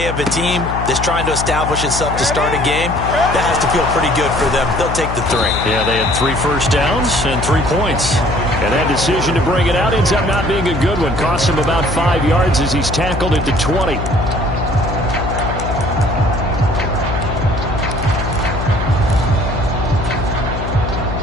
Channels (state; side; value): noise; left; hum, 5 dB below the sound